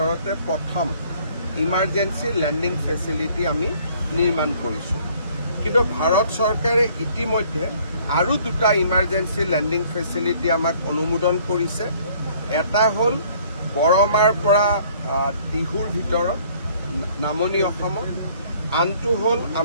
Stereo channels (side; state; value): both; inverted; correlation -0.58